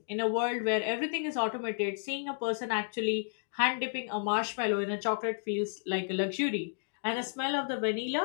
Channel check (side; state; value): right; silent; digital silence